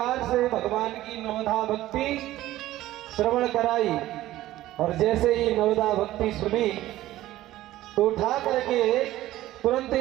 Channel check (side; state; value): left; quieter; 15.1 dB